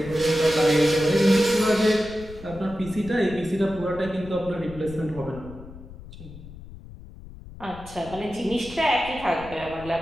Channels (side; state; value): left; noise; rumble, 16 dB below the sound